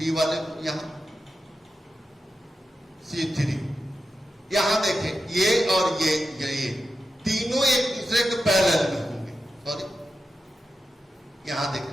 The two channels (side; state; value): both; normal; correlation 0.90